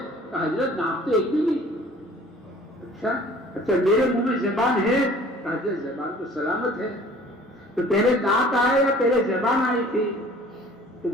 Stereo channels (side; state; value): both; normal; correlation 0.50